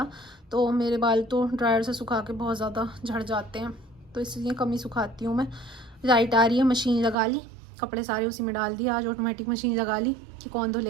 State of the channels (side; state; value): left; drops out; at 7.2 s